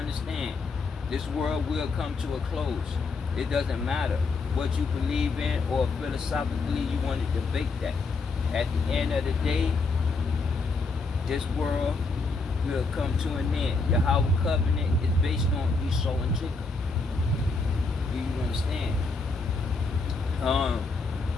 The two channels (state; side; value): quieter; right; 4.0 dB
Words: this world will come to a close. It doesn't matter what you believe in or philosophically you want to debate that. At the end of the day, this world will come to an end. YAHAWAH covenant is based on Esau and Jacob. Do you understand?